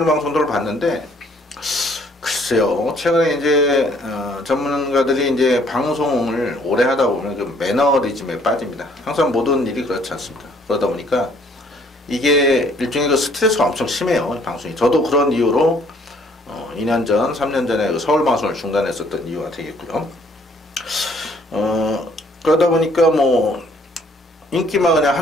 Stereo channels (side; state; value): both; normal; correlation 0.62